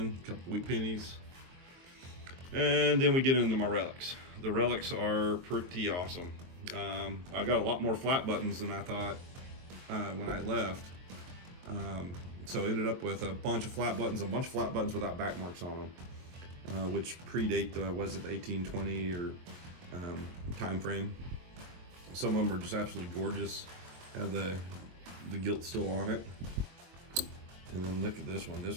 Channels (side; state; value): left; late; 23 ms